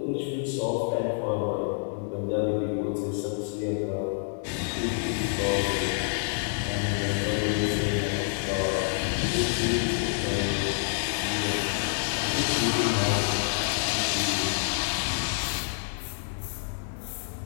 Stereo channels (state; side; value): silent; right; digital silence